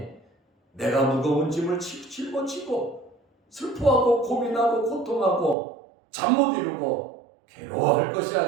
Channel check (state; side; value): drops out; left; at 5.6 s